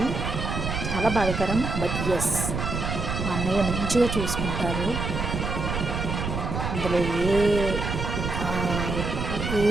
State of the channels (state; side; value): noise; right; rumble, 3 dB below the sound